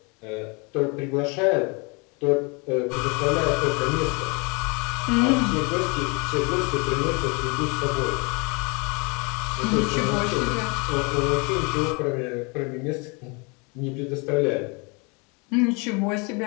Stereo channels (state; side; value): quieter; right; 30.6 dB